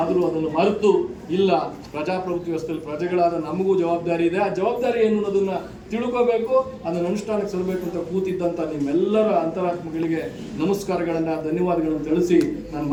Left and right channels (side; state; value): both; identical; correlation 1.00